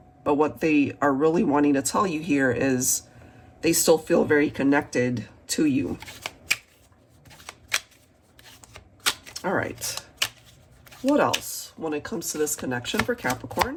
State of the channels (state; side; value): identical; both; correlation 1.00